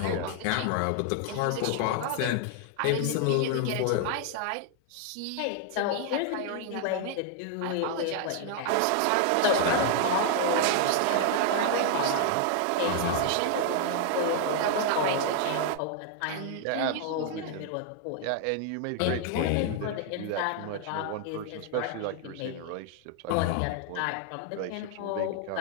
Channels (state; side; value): different; both; correlation 0.00